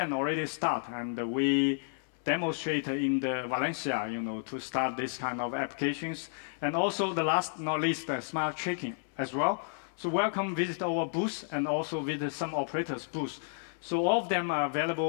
already start, and we demonstrate in the Valencia, to start this kind of applications. And also the last not least, smart tracking as well. So welcome, visit our booth, and also visit some operators' booth. So all of them are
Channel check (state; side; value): silent; right; 57 dB below the other